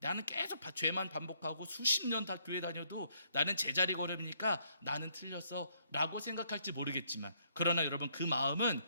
나는 계속 죄만 반복하고 수십 년 다 교회 다녀도 나는 제자리 걸음이니까 나는 틀렸어 라고 생각할지 모르겠지만, 그러나 여러분 그 마음은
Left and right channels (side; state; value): both; inverted; correlation -0.69